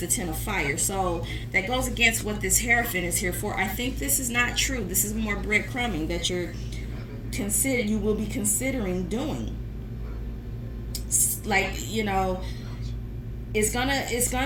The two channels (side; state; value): both; identical; correlation 1.00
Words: 10 of fire. So that goes against what this Hierophant is here for. I think this is not true. This is more breadcrumbing that you will be considering doing. Like, it's gonna,